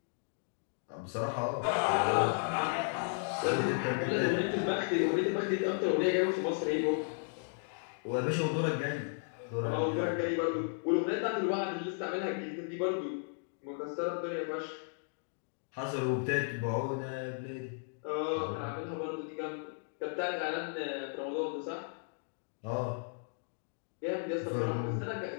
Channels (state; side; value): silent; right; digital silence